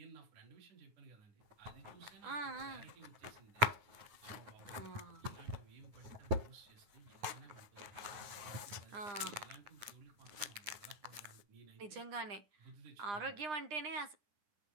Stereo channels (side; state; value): left; late; 9.8 ms